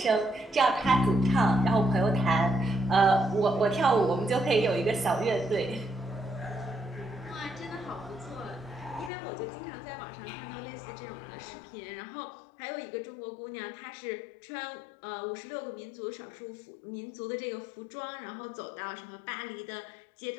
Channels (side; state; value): right; drops out; at 9.1 s